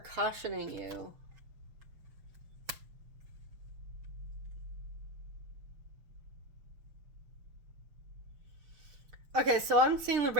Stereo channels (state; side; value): late; left; 6.1 ms